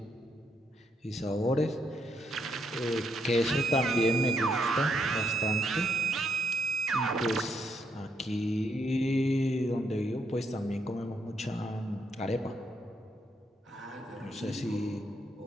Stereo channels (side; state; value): both; normal; correlation 0.76